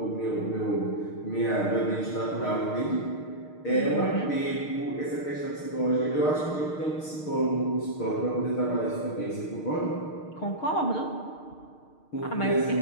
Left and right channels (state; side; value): late; right; 6.5 ms